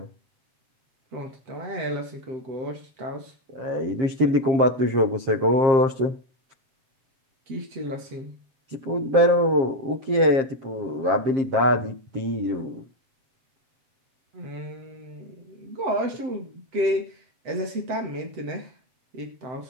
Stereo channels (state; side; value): late; left; 7.5 ms